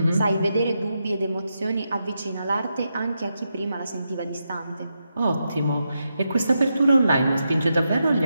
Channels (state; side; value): inverted; both; correlation -0.85